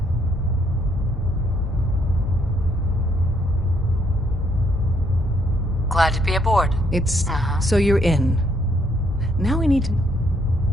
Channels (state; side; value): normal; both; correlation 0.70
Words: Glad to be aboard. It's... So you're in. Now we need to...